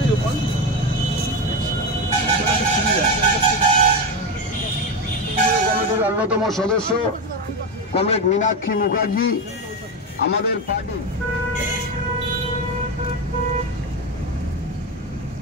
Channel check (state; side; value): normal; both; correlation 0.15